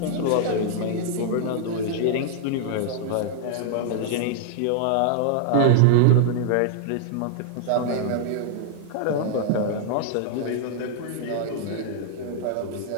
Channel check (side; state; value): both; different; correlation -0.01